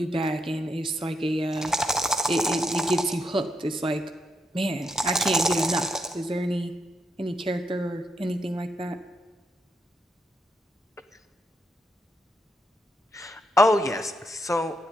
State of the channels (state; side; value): normal; both; correlation 0.79